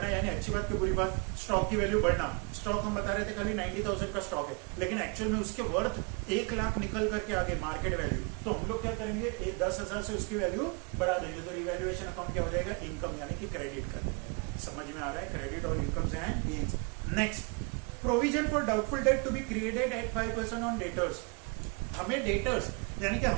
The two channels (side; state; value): left; quieter; 33.2 dB